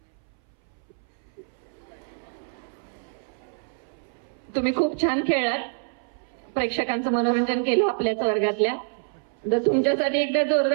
तुम्ही खूप छान खेळलात, प्रेक्षकांचं मनोरंजन केलं आपल्याच वर्गातल्या. जर तुमच्यासाठी एकदा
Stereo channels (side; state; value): left; silent; 61 dB below the other